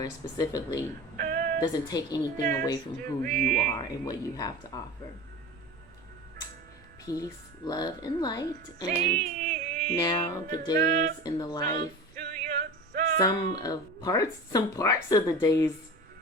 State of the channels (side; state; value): both; normal; correlation 0.33